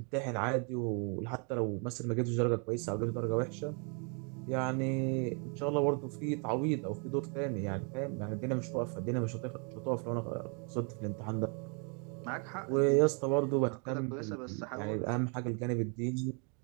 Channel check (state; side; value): quieter; left; 37.4 dB